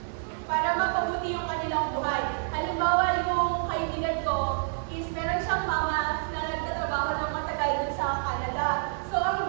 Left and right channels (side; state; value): left; silent; 56 dB below the other